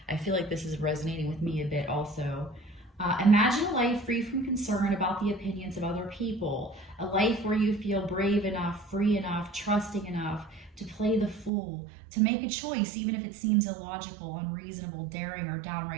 I feel like this is resonating with me a bit also. Imagine a life free from concern about the opinions of other people. A life where you feel brave enough, free enough, trusting enough to play the fool, to make a choice even if it seems illogical, unreasonable, daring, or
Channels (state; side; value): drops out; left; at 11.5 s